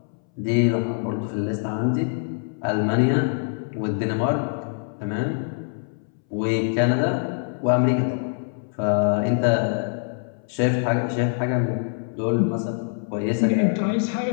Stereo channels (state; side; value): silent; right; 62 dB below the other